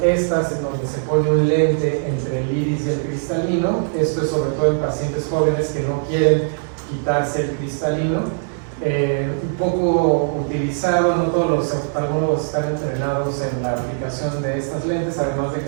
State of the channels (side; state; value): left; silent; digital silence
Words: estas en donde se pone un lente entre el iris y el cristalino. Esto es sobre todo en pacientes jóvenes que no quieren quitarse el cristalino. Un poco utilizado, no todos los oftalmólogos están entrenados en la aplicación de estas lentes, además de